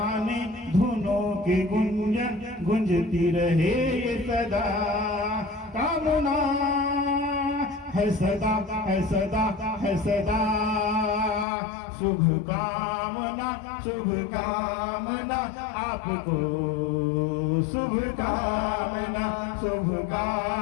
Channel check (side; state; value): right; drops out; at 11.5 s